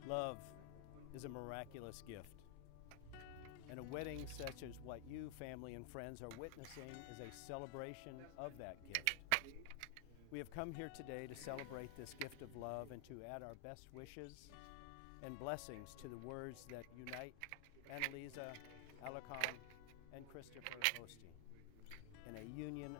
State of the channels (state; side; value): different; both; correlation 0.00